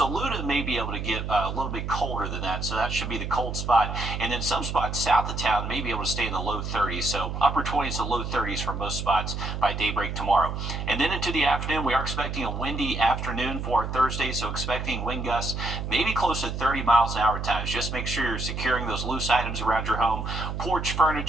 may be able to get a little bit colder than that, so that should be the cold spot. And then some spots south of town may be able to stay in the low 30s, so upper 20s to low 30s for most spots by daybreak tomorrow. And then into the afternoon, we are expecting a windy afternoon for our Thursday, so expecting wind gusts maybe close to 30 miles an hour at times. Just make sure you're securing those loose items around your home. Porch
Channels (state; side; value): noise; right; hum, 4 dB below the sound